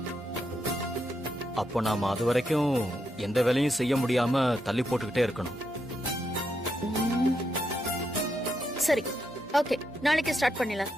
அப்போ நாம அது வரைக்கும் எந்த வேலையும் செய்ய முடியாம தள்ளி போட்டுக்கிட்டே இருக்கணும். சரி, ஓகே, நாளைக்கு ஸ்டார்ட் பண்ணிடலாம்.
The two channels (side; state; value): both; normal; correlation 0.81